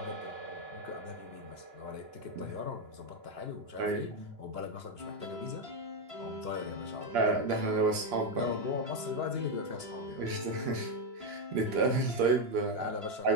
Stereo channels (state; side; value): late; left; 2.9 ms